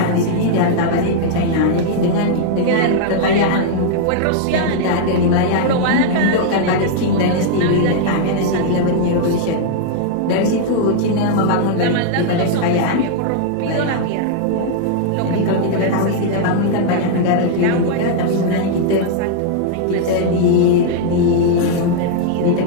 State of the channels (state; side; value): different; both; correlation -0.01